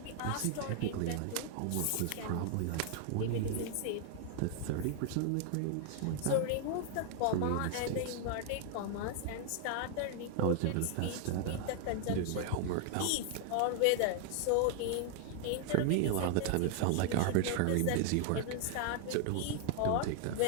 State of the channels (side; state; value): both; different; correlation 0.00